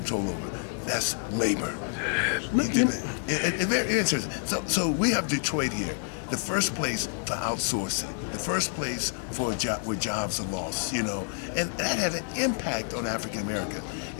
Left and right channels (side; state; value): right; silent; 58 dB below the other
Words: over. That's labor. It's very interesting. So we have Detroit here, the first place for outsourcing, the first place for a job where jobs are lost, you know, and that had an impact on African Americans.